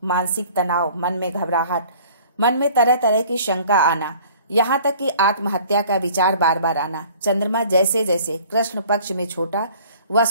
मानसिक तनाव, मन में घबराहट, मन में तरह तरह की शंका आना, यहाँ तक कि आत्महत्या का विचार बार बार आना, चंद्रमा जैसे जैसे कृष्ण पक्ष में छोटा व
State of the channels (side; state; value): both; inverted; correlation -0.50